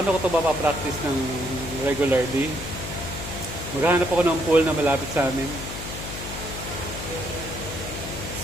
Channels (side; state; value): left; noise; hum, 9 dB below the sound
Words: ko ito mapapractice ng regularly? Maghahanap ako ng pool na malapit sa amin.